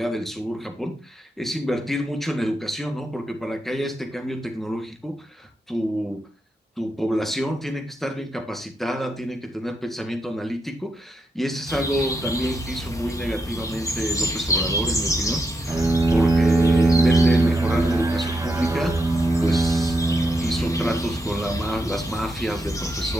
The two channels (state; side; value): normal; both; correlation 0.83